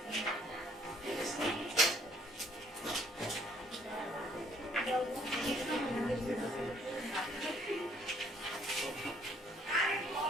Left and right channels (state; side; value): normal; both; correlation 0.63